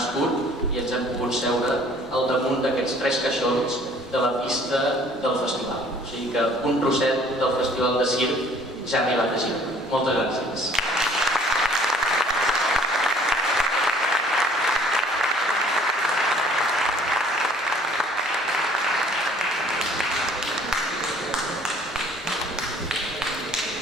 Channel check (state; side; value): normal; both; correlation 0.56